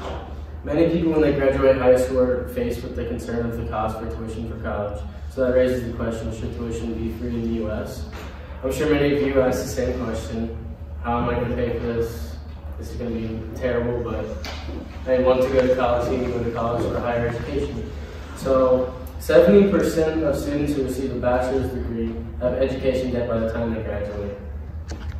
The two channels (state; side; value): identical; both; correlation 1.00